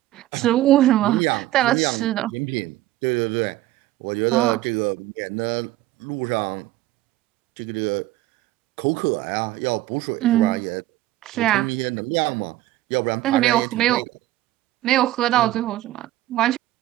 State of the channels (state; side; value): quieter; left; 15.5 dB